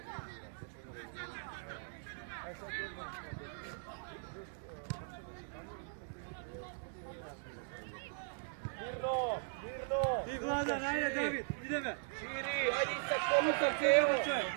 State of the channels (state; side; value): silent; left; digital silence